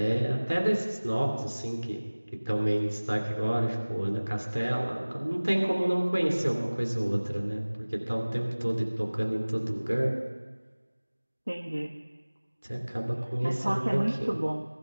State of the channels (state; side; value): inverted; both; correlation -1.00